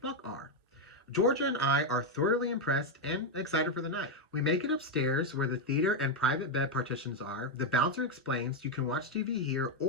are. Georgia and I are thoroughly impressed and excited for the night. We make it upstairs where the theater and private bed partitions are. The bouncer explains you can watch TV here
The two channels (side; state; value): both; normal; correlation 0.04